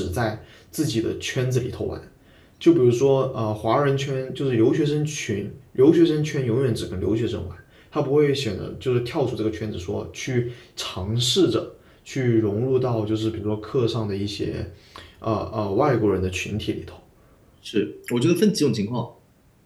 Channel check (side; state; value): both; identical; correlation 1.00